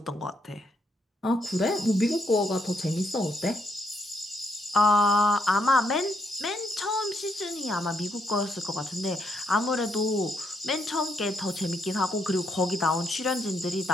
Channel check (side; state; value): both; normal; correlation 0.76